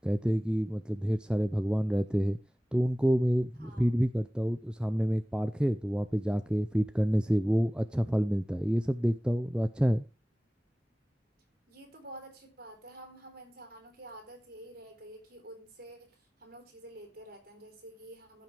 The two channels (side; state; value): both; normal; correlation 0.98